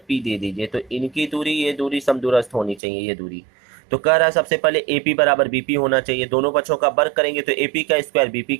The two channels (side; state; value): left; drops out; at 2.8 s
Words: दे दीजिए, तो इनकी दूरी, ये दूरी समदूरस्थ होनी चाहिए, ये दूरी। तो कह रहा है सबसे पहले ए पी बराबर बी पी होना चाहिए। दोनों पक्षों का वर्ग करेंगे तो ए पी का स्क्वायर बी पी